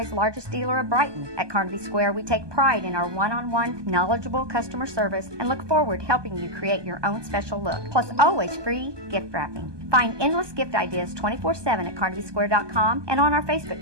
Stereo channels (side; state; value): left; late; 1.2 ms